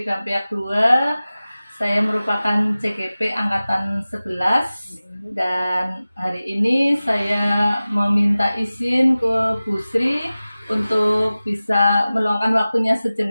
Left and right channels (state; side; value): inverted; both; correlation -0.97